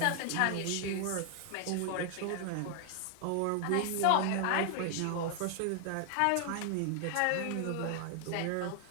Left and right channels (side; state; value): both; different; correlation 0.00